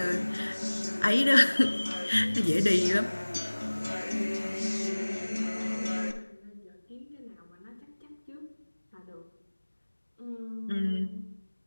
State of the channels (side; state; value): both; inverted; correlation -1.00